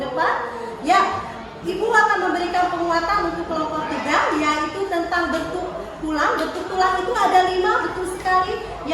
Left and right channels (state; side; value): identical; both; correlation 1.00